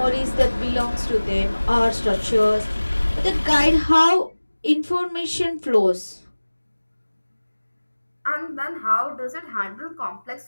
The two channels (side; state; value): both; inverted; correlation -1.00